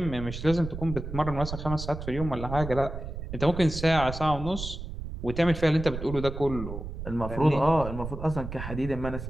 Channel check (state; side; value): noise; right; rumble, 8 dB below the sound